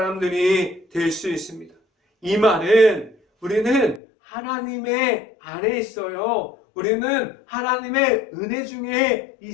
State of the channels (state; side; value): drops out; right; at 4.0 s